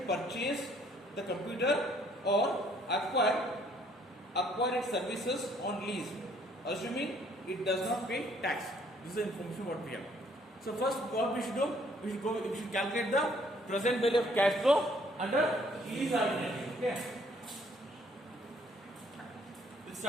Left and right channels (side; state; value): both; normal; correlation 0.63